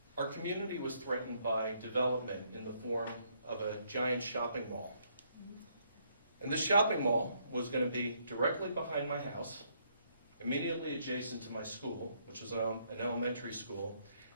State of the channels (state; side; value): inverted; both; correlation -0.71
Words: our community was threatened by development in the form of a giant shopping mall. And this shopping mall was going to be directly behind my house, immediately adjacent to my school, which was an elementary school,